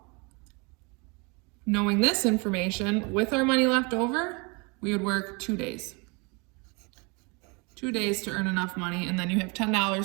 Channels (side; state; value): left; quieter; 30.2 dB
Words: knowing this information, with our money left over, we would work 2 days. 2 days to earn enough money, and then you have